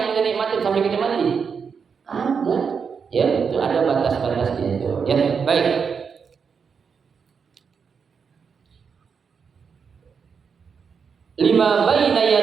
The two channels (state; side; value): quieter; left; 6.1 dB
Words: kita nikmatin sampai kita mati? Ada. Ya itu ada batas-batasnya itu. Ya baik. Lima baina